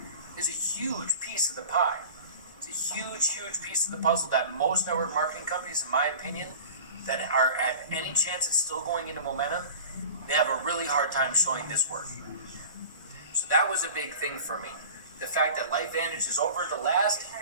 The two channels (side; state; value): both; inverted; correlation -0.39